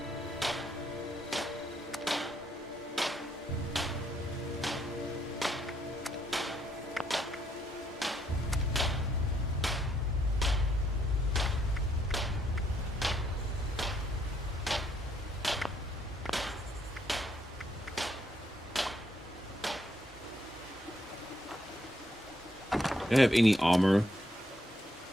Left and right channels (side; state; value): both; normal; correlation 0.73